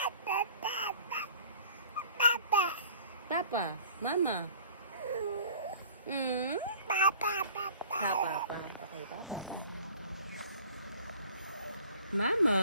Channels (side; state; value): both; inverted; correlation -0.48